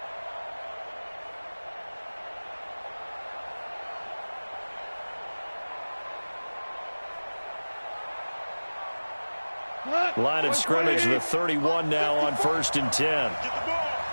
Line of scrimmage, the 31 now on 1st and 10. Get the ball.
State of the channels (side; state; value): both; inverted; correlation -1.00